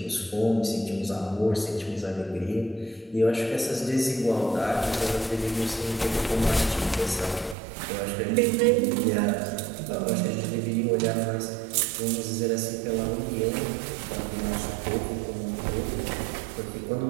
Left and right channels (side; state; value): left; drops out; at 7.6 s